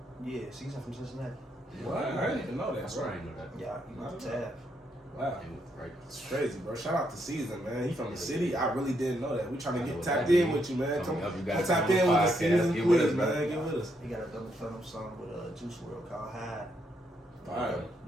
Yeah, Season from Cincinnati. What? I didn't even know that. That's right. I didn't know that. Yeah, he was Tab. Wow. Right. It's crazy, bro. Shout out to Season, man. He from the city. I really didn't know that. We trying to get what tapped that in mean. with you, man. Come Up, you guys tap on in the with the podcast. Season, Get with please, us, man. Get with us. He got a double platinum song with Juice WRLD called Hide. Fire.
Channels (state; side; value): normal; both; correlation 0.77